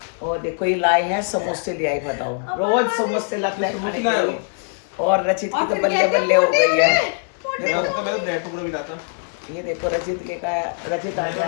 और देखो ये लाए हैं समोसे, ले आई, बताओ रोज समोसे लाते हैं खाने के लिए। और रचित की तो बल्ले बल्ले हो गई है। देखो ये देखो रचित के का, रचित आ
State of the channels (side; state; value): right; silent; 64 dB below the other